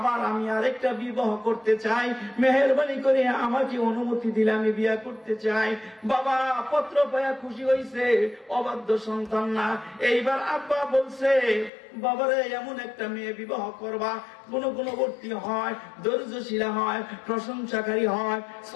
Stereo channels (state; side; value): drops out; right; at 11.7 s